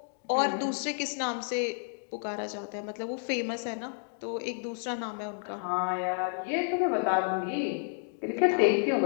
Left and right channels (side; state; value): right; silent; digital silence